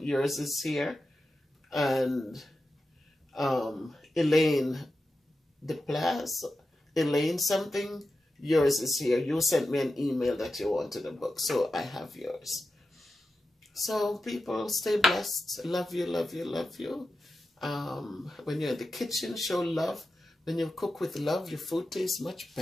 yours is here. And Elaine DePlas, Elaine something, yours is here. You sent me an email that you wanted a book, so I have yours. So people, stay blessed. Love you, love you, love you. When you're in the kitchen, show love. When you cook with love, your food tastes much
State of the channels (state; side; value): normal; both; correlation 0.92